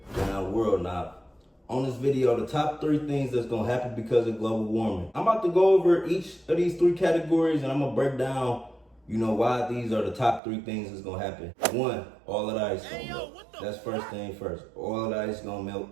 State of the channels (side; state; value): left; drops out; at 10.4 s